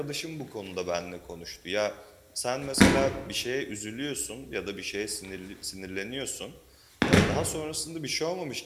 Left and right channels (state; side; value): identical; both; correlation 1.00